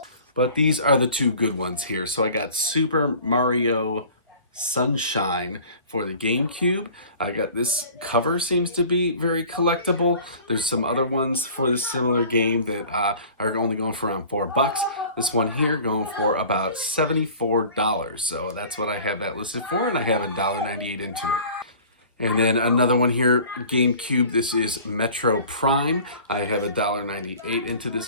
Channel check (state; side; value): inverted; both; correlation -0.46